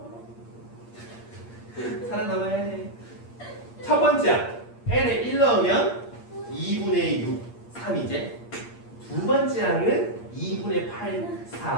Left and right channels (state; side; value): late; right; 8.6 ms